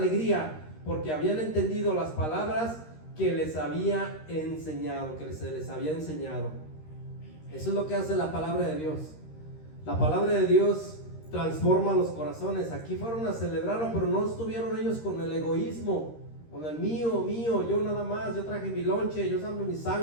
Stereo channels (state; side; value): late; right; 13 ms